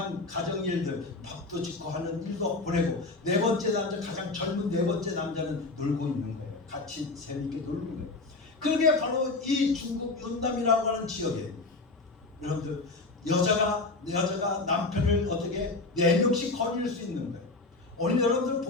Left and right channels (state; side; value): quieter; right; 3.4 dB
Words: 가정일들 밥도 짓고 하는 일도 보내고 네 번째 남자 가장 젊은 네 번째 남자는 놀고 있는 거예요. 같이 재밌게 놀는 거예요. 그게 바로 이 중국 윤남이라고 하는 지역에 여러분들 여자가 남편을 어떻게 4명씩 거느릴 수 있는 거예요. 오늘 여러분들